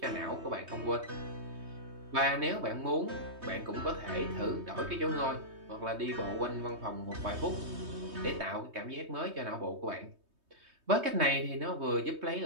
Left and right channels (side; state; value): left; late; 3.2 ms